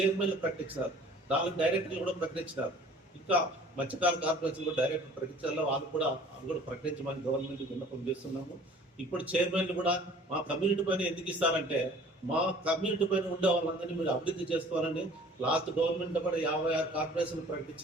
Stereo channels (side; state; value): both; normal; correlation 0.50